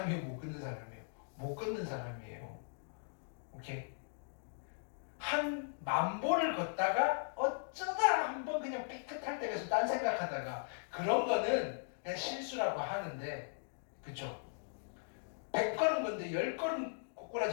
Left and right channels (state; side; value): silent; right; digital silence